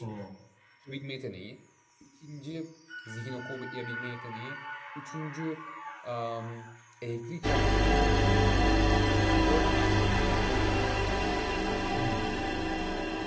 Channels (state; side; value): identical; both; correlation 1.00